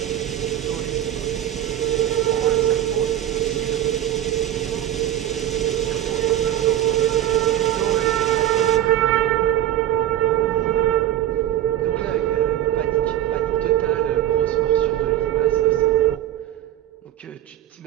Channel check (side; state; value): left; quieter; 12.2 dB